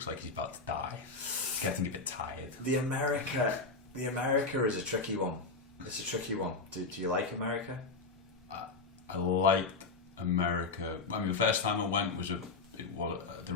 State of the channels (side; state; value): right; quieter; 4.0 dB